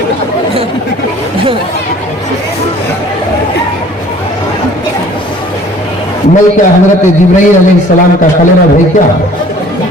میں کیا حضرت جبرائیل علیہ السلام کا خلیرہ بھائی کیا؟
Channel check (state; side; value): normal; both; correlation 0.52